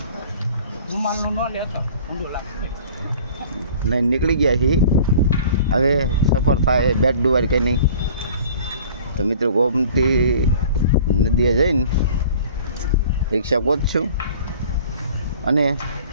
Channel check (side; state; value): both; inverted; correlation -0.47